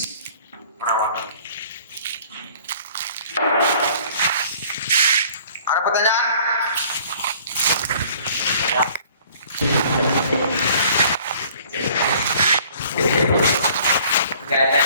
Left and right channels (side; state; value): both; inverted; correlation -0.54